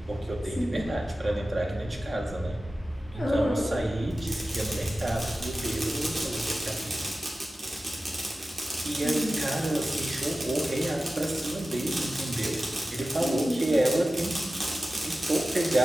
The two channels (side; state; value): both; normal; correlation 0.95